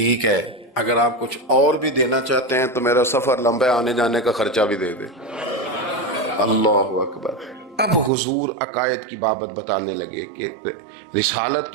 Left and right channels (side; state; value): left; drops out; at 8.1 s